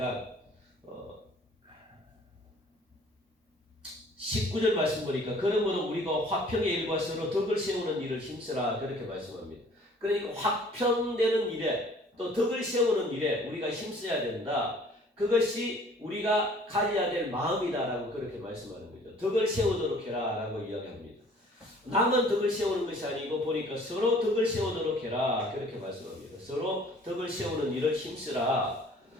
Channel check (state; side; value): normal; both; correlation 0.53